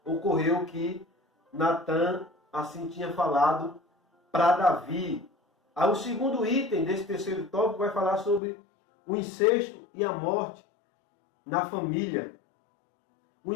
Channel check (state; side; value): drops out; right; at 8.4 s